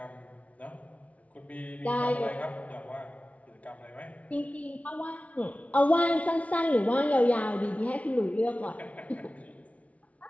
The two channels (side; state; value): right; late; 0.067 ms